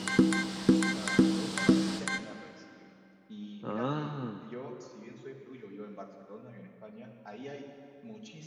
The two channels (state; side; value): identical; both; correlation 1.00